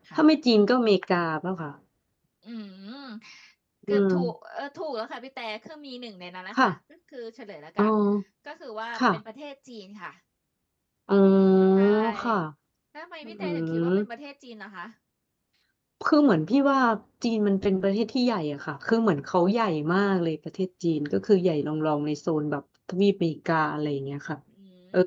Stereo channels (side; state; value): both; identical; correlation 1.00